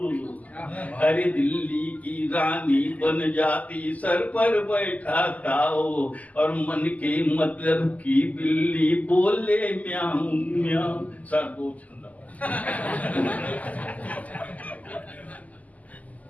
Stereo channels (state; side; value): late; right; 0.076 ms